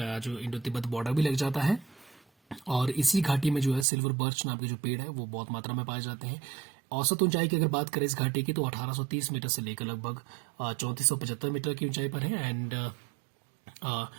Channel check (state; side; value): drops out; left; at 3.9 s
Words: जो इंडो तिब्बत बॉर्डर भी लग जाता है। और इसी घाटी में जो है सिल्वर बर्च नाम के जो पेड़ है वो बहुत मात्रा में पाए जाते हैं। औसत ऊंचाई की अगर बात करें इस घाटी की तो 1830 मीटर से लेकर लगभग 3475 मीटर की ऊंचाई पर है। एंड